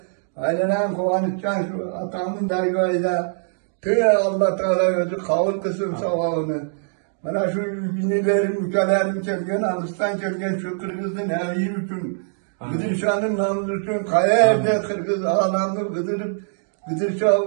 aynen kovanıçcan şu atamın dergahıyla, Allah Teala özü kavul kısım savağını. Bana şu binilerim, ülkelerim çelgen, Ağustan çelgen şu Kırgız'ın evi üçün, Gıdırşan'ın namlı üçün, kaya evde Kırgız ağlamını Gıdırşa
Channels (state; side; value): silent; left; digital silence